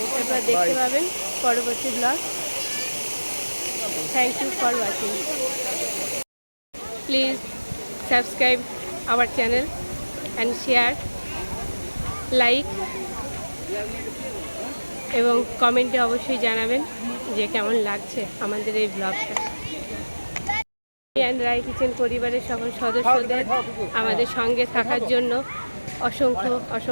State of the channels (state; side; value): inverted; both; correlation -1.00